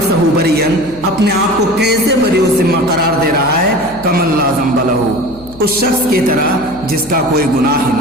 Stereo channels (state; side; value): noise; left; hum, 19 dB below the sound